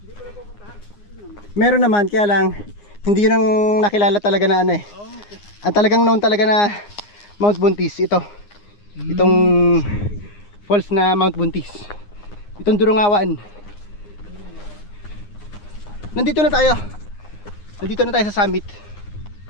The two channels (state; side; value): late; right; 9.7 ms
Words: Meron naman, kaya lang hindi yun ang nakilala talaga na ano eh. Ang talagang known talaga na Mount Buntis, ito. Itong falls na Mount Buntis. Itong Durungawan. Nandito na tayo. Nandito na tayo sa summit.